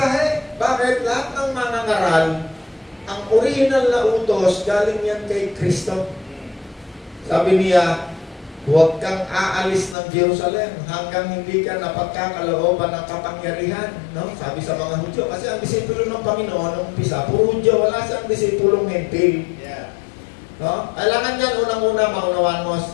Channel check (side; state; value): right; drops out; at 10.0 s